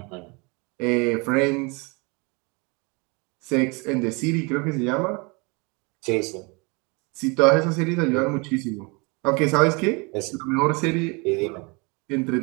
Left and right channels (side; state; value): left; quieter; 29.5 dB